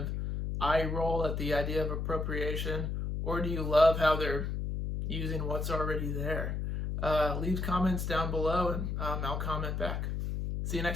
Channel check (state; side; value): noise; left; hum, 2 dB below the sound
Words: eye roll at the idea of appropriation, or do you love how they're using what's already there? Leave comments down below and I'll comment back. See you